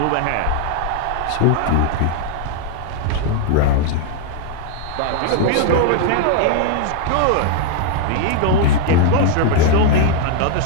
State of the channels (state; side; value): different; both; correlation 0.00